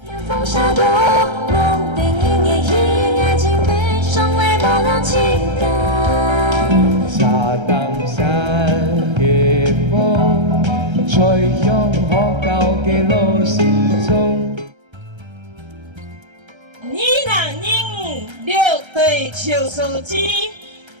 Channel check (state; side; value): late; left; 1.3 ms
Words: 风沙多，梦定夜夜爱情悲伤来冒亮情感。沙当山嘅風，吹向可舊嘅路時鐘。2025六堆邱書記，